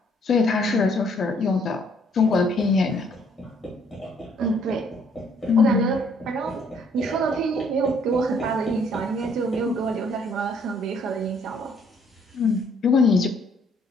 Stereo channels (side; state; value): both; normal; correlation 0.65